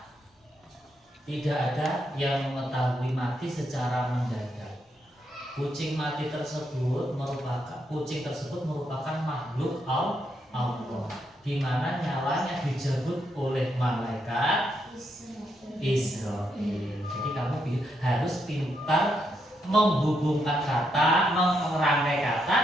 tidak ada yang mengetahui mati secara mendadak. Kucing tersebut merupakan makhluk Allah, di mana nyawanya dijemput oleh malaikat Israel. Jadi kamu harus pintar menghubungkan kata, merangkai kata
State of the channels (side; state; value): both; normal; correlation 0.79